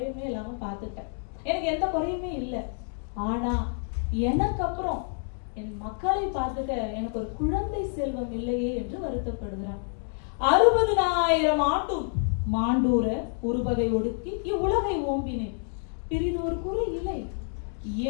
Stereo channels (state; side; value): silent; right; 59 dB below the other